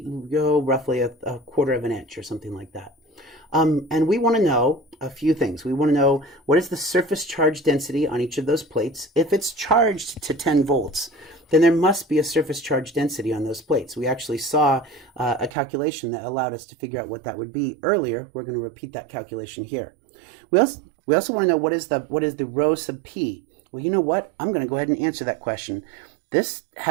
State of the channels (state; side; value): drops out; left; at 15.5 s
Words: roughly a quarter of an inch or something like that. And we want to know a few things. We want to know what is the surface charge density on each of those plates. If it's charged to 10 volts, then there must be a surface charge density on those plates. We actually saw a calculation that allowed us to figure out what that would be earlier. We're going to repeat that calculation here. We also want to know what is the rho sub p. Well, you know what? I'm going to go ahead and answer that question. This